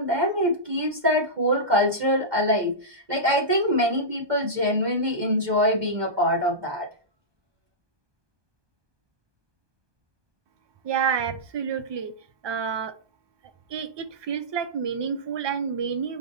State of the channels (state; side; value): late; left; 1.2 ms